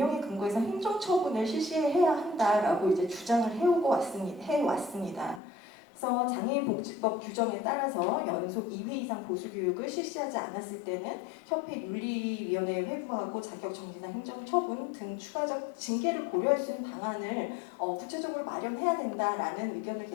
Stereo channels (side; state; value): right; drops out; at 5.4 s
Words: 근거해서 행정처분을 실시해야 한다라고 주장을 해왔습니다. 그래서 장애인복지법 규정에 따라서 연속 2회 이상 보수교육을 실시하지 않았을 때는 협회 윤리위원회에 회부하고 자격정지나 행정처분 등 추가적 징계를 고려할 수 있는 방안을 구체적으로 마련해야 된다라는 의견을